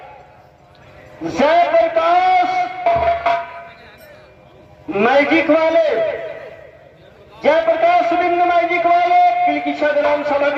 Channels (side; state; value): both; identical; correlation 1.00